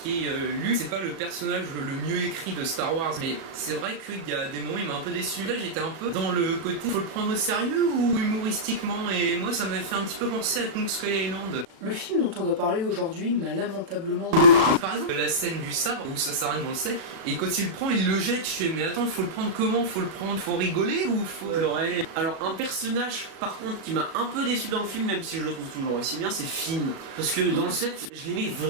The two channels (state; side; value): late; left; 36 ms